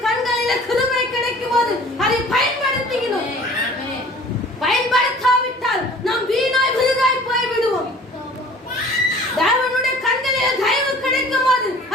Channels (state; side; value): normal; both; correlation 0.48